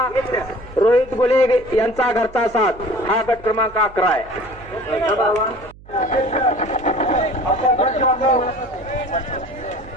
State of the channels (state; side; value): noise; right; hum, 22 dB below the sound